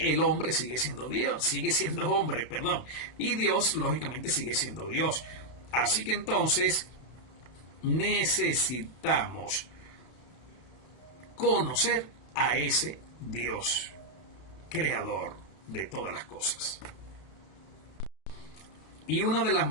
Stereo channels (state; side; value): late; right; 32 ms